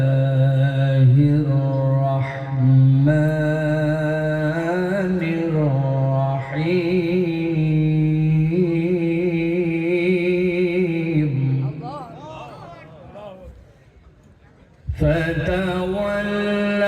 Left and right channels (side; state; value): both; identical; correlation 1.00